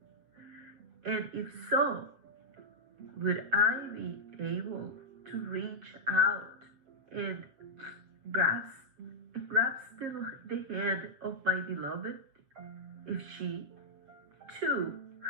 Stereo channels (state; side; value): late; left; 7.4 ms